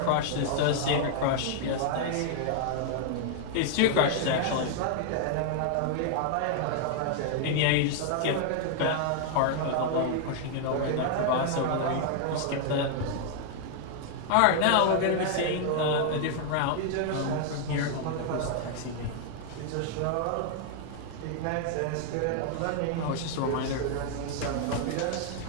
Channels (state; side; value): different; both; correlation 0.00